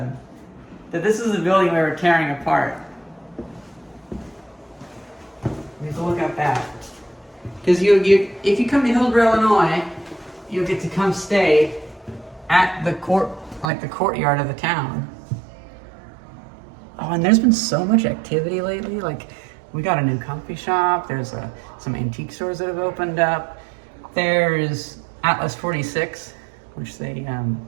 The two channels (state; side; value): drops out; left; at 13.7 s